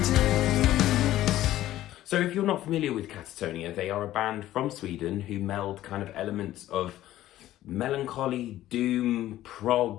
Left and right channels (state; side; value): quieter; right; 14.1 dB